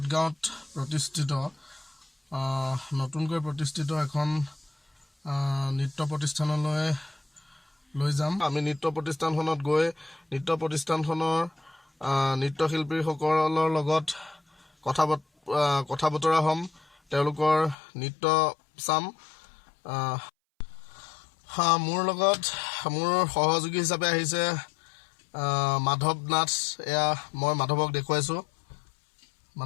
গাঁৱত প্ৰতিষ্ঠিত নতুনকৈ প্ৰতিষ্ঠিত এখন নৃত্য প্ৰতিষ্ঠানলৈ লৈ যাম। আমি নৃত্য প্ৰতিষ্ঠানখনত গৈ নৃত্য প্ৰতিষ্ঠানখনৰ নৃত্যশিল্পীসকলৰ লগত কথা বতৰা হ'ম, তেওঁলোকৰ নৃত্য চাম। মোৰ লগত মোৰ সহযোগী হিচাপে আহিছে মাধৱ নাথ। এয়া মই মাধৱক দেখুৱাইছোঁ।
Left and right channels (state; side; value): drops out; right; at 17.8 s